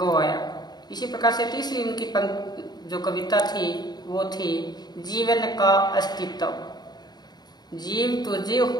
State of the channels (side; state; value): right; late; 0.20 ms